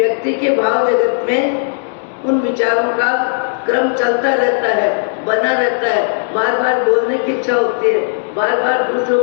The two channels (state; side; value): silent; right; digital silence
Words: के भाव जगत में उन विचारों का क्रम चलता रहता है, बना रहता है। बार बार बोलने की इच्छा होती है, बार बार दूसरों